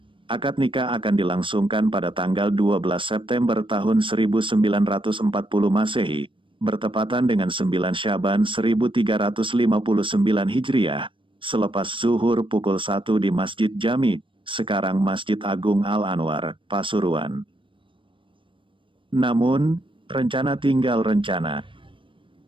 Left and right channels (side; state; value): left; late; 0.25 ms